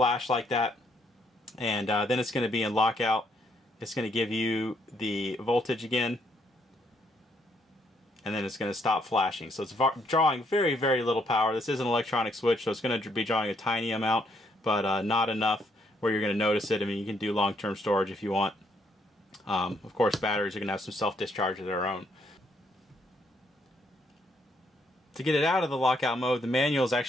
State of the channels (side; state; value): both; normal; correlation 0.72